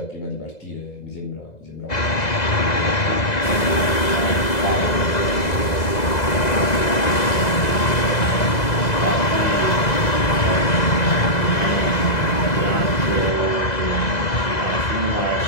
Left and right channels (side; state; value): right; late; 2.0 ms